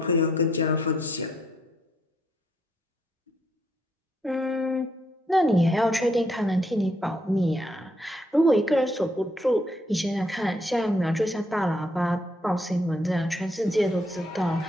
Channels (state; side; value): normal; both; correlation 0.73